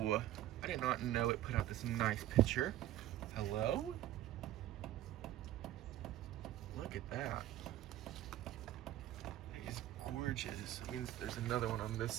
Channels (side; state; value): left; quieter; 13.5 dB